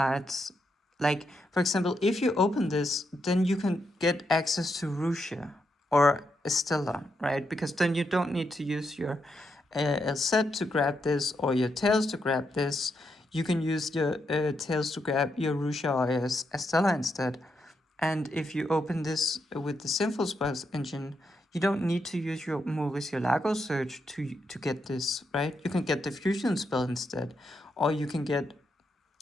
Like, for example, if you open this, then you can get access to Russia or Estella, right? Because then you don't need to use your set to grab this or your tails to grab this. You can use your tails to grab your Russia or your Estella instead. And if you open this with the Sinful Spoils engine, you don't need to use your Mauricio Lago search to get this, right? You can get the fusion spell instead, or you can get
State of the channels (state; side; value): normal; both; correlation 0.82